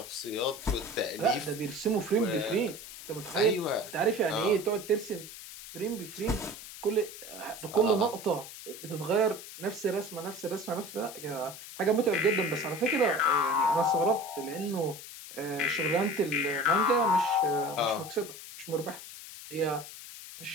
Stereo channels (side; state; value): left; noise; hiss, 13 dB below the sound